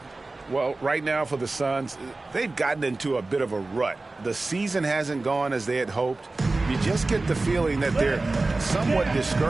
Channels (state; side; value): quieter; left; 3.3 dB